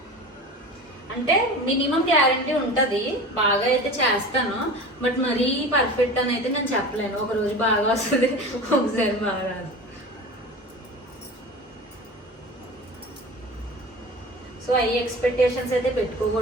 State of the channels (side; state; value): both; normal; correlation 0.34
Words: అంటే మినిమం గ్యారంటీ ఉంటుంది, బాగా అయితే చేస్తాను, బట్ మరీ పర్ఫెక్ట్ అని అయితే నేను చెప్పలేను. ఒక రోజు బాగా వస్తుంది, ఒకసారి బాగా రాదు. సో ఐ ఎక్స్పెక్టేషన్స్ అయితే